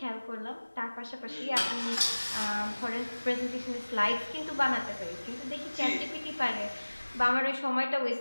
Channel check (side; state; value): both; inverted; correlation -1.00